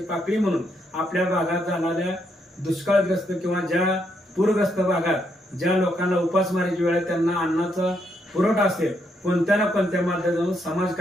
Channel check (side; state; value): both; normal; correlation 0.77